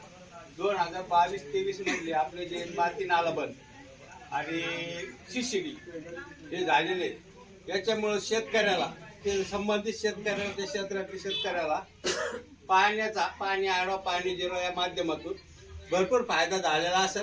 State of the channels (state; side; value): identical; both; correlation 1.00